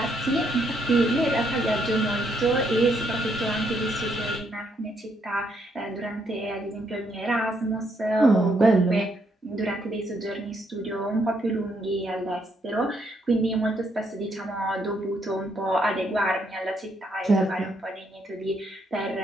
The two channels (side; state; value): both; normal; correlation 0.74